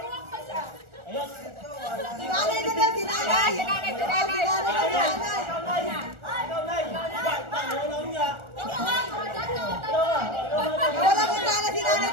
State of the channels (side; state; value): left; late; 1.4 ms